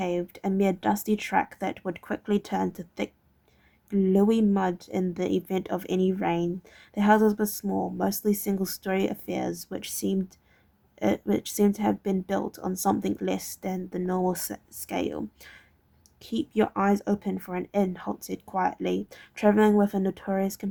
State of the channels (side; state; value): both; identical; correlation 1.00